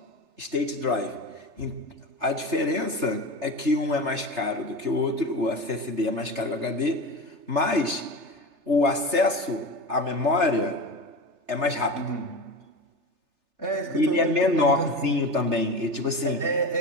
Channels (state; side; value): late; left; 3.3 ms